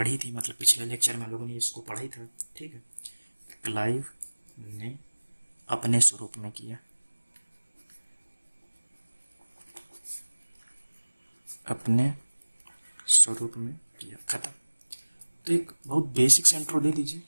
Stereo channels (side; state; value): both; inverted; correlation -1.00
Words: थी, मतलब पिछले लेक्चर में हम लोगों ने इसको पढ़ा ही था, ठीक है। क्लाइव ने अपने स्वरूप में किया, अपने स्वरूप में किया, खत्म। तो एक बहुत बेसिक से इंट्रो दे दीजिए,